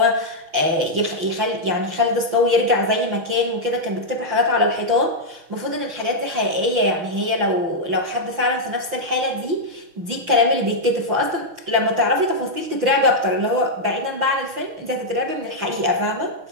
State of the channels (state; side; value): late; left; 6.2 ms